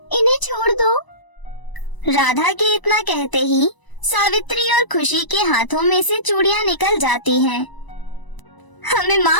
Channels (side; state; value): right; late; 1.0 ms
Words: इन्हें छोड़ दो। राधा के इतना कहते ही सावित्री और खुशी के हाथों में से चूड़ियाँ निकल जाती हैं। हमें